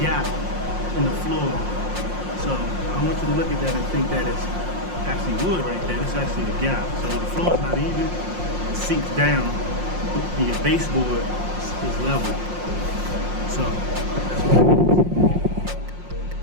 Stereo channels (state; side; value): late; left; 5.6 ms